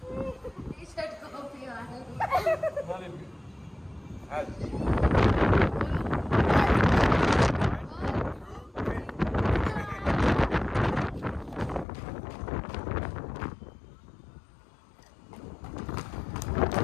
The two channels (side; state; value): right; drops out; at 11.9 s